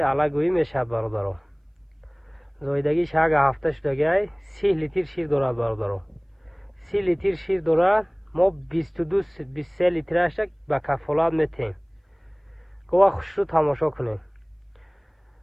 ала гӯӣ мешавад бародаро зоидагиш як ҳафта шудагиай 30 литр шир дорад бародаро 30 литр шир дорад мо 22-23 литрашак ба кафолат метем гова хушрӯ тамошо кунем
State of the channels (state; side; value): identical; both; correlation 1.00